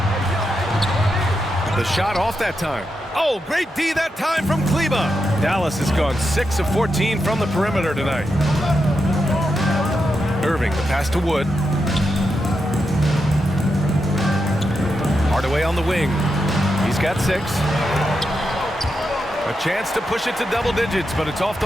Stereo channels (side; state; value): both; normal; correlation 0.86